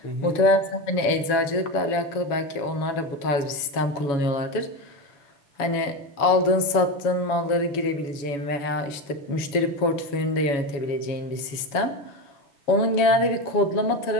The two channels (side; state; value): right; late; 7.1 ms